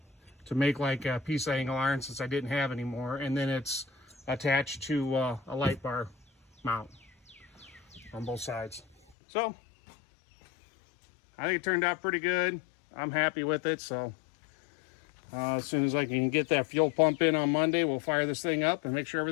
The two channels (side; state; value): right; drops out; at 9.0 s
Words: to make like a piece of angle iron since I didn't have any more. And then it's attached to a light bar mount on both sides. So I think it turned out pretty good. I'm happy with it. So as soon as I can get that fuel pump in on Monday, we'll fire this thing up and make sure